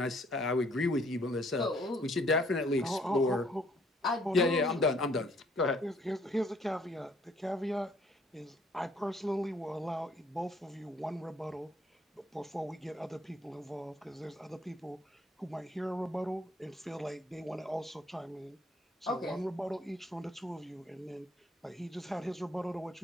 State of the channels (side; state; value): both; normal; correlation 0.64